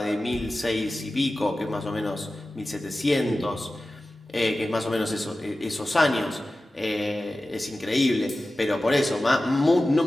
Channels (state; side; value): normal; both; correlation 0.95